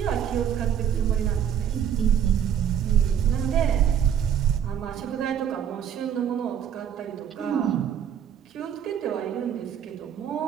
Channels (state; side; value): quieter; left; 8.9 dB